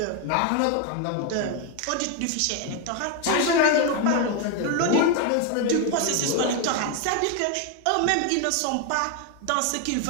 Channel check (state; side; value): different; both; correlation 0.01